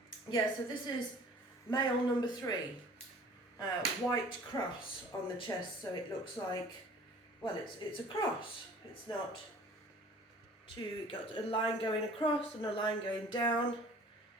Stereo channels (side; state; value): both; normal; correlation 0.49